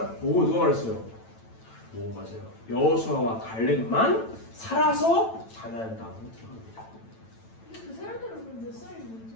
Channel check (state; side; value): late; right; 9.0 ms